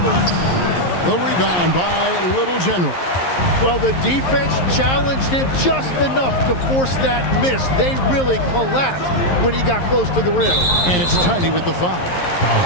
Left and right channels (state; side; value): late; right; 11 ms